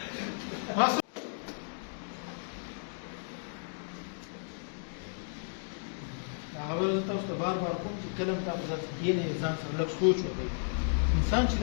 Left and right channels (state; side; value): silent; right; digital silence